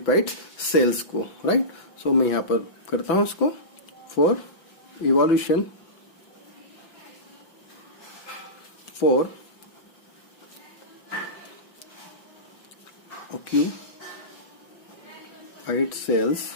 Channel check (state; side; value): late; right; 6.0 ms